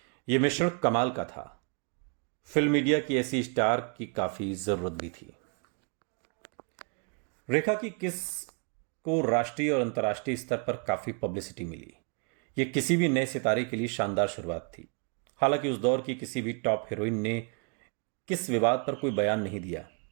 यह मिश्रण कमाल का था। फिल्म मीडिया की ऐसी स्टार की काफी जरूरत भी थी। रेखा की किस को राष्ट्रीय और अंतर्राष्ट्रीय स्तर पर काफी पब्लिसिटी मिली। यह किसी भी नए सितारे के लिए शानदार शुरुआत थी। हालांकि उस दौर की किसी भी टॉप हीरोइन ने किस विवाद पर कोई बयान नहीं दिया,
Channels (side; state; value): left; quieter; 37.9 dB